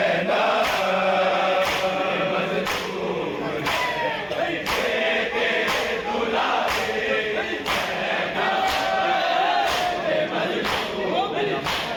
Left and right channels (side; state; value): both; identical; correlation 1.00